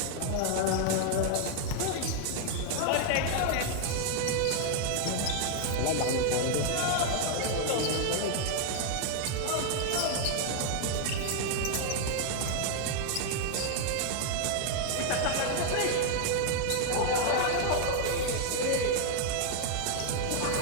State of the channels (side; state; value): both; different; correlation 0.00